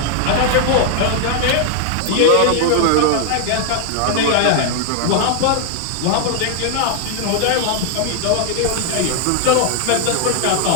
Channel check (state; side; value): different; both; correlation 0.00